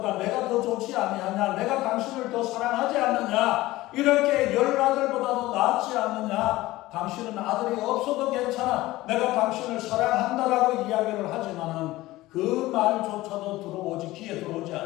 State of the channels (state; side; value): quieter; right; 17.9 dB